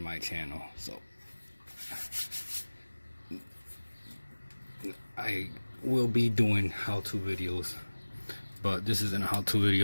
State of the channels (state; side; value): inverted; both; correlation -1.00